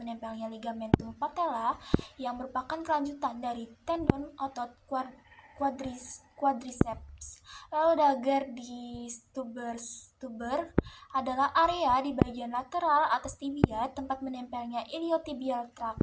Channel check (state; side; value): identical; both; correlation 1.00